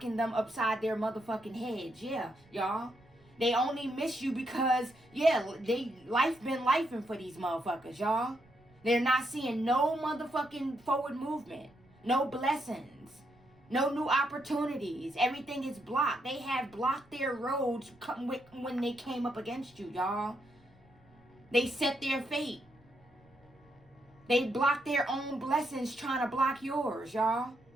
them upside their motherfucking heads. Yeah, y'all. They only miss you because, yeah, life been lifing for these motherfuckers, y'all. They're not seeing no motherfucking forward movement. No blessings. No new opportunities. Everything is blocked. They have blocked their roads when they came up against you, y'all. They set their fate. They block their own blessings trying to block yours, y'all.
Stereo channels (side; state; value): right; noise; rumble, 29 dB below the sound